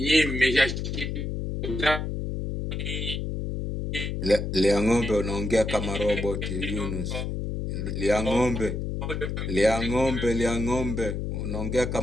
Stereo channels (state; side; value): noise; left; hum, 3 dB below the sound